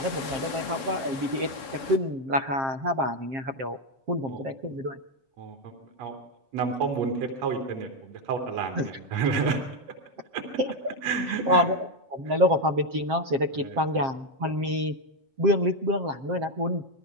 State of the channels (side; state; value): left; late; 7.5 ms